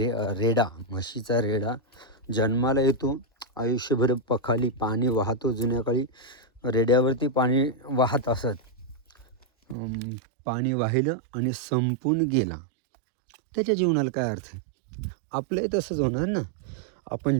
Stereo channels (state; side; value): drops out; left; at 9.8 s